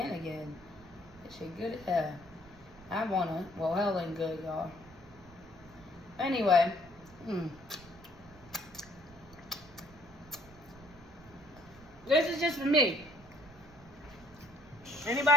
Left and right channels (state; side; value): noise; right; rumble, 22 dB below the sound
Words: It's good as hell. I wanna, well, hell ain't good, y'all. Anyway. This is just for me.